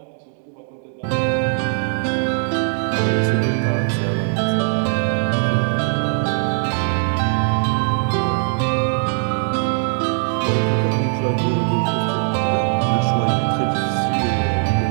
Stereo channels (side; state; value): left; silent; 59 dB below the other